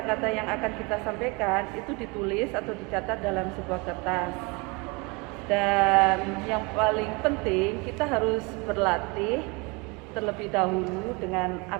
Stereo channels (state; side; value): quieter; left; 28.1 dB